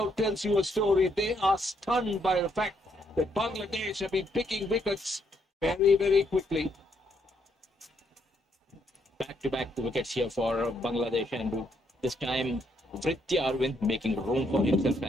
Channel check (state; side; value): normal; both; correlation 0.74